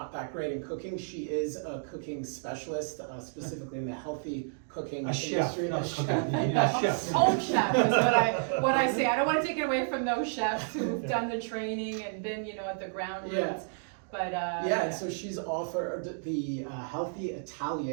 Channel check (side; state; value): left; silent; digital silence